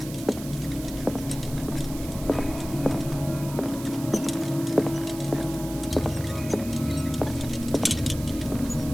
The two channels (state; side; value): noise; right; hiss, 14 dB below the sound